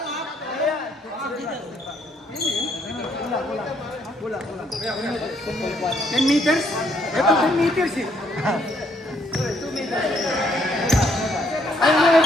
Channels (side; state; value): both; normal; correlation 0.70